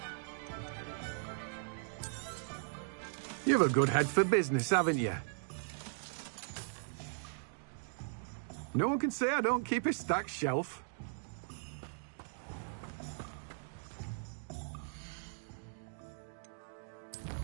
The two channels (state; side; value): silent; left; digital silence